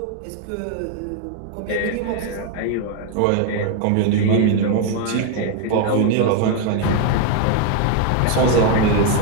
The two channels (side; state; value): both; different; correlation 0.01